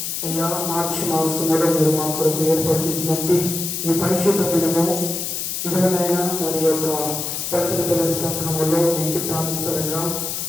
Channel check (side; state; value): left; noise; hiss, 3 dB below the sound